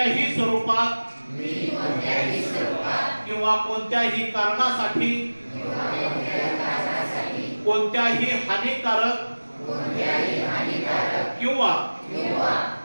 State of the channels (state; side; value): inverted; both; correlation -1.00